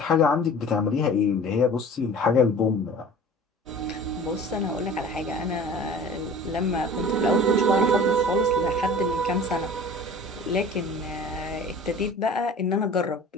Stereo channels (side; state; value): both; normal; correlation 0.42